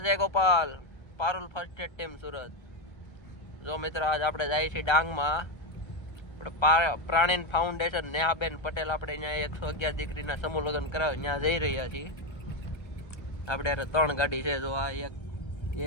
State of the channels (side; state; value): right; late; 1.3 ms